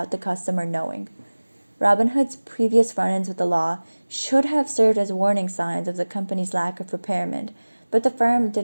the customer knowing. Robinhood's previous run-ins with the law should have served as warning signs of the company's lack of preparation, but the firm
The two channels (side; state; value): both; inverted; correlation -1.00